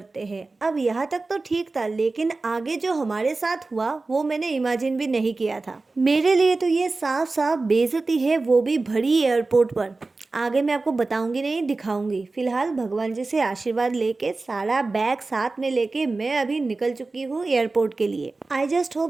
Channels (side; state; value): left; quieter; 3.5 dB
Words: हैं। अब यहाँ तक तो ठीक था, लेकिन आगे जो हमारे साथ हुआ वो मैंने इमेजिन भी नहीं किया था। मेरे लिए तो ये साफ साफ बेइज्जती है, वो भी भरी एयरपोर्ट पर। आगे मैं आपको बताऊंगी नहीं, दिखाऊंगी। फिलहाल भगवान जी से आशीर्वाद लेके सारा बैग साथ में लेके मैं अभी निकल चुकी हूँ एयरपोर्ट के लिए। आई जस्ट